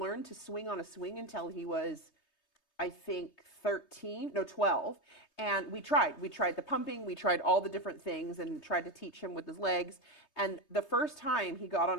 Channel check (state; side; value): late; right; 3.2 ms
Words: to swing on a swing until he was, I think, 12. And we tried the pumping, we tried all the different things and tried to teach him with his legs. And the first time he got